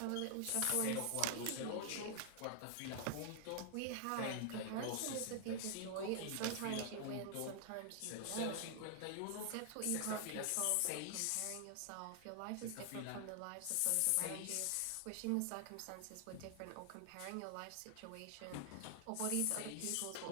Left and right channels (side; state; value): both; different; correlation 0.00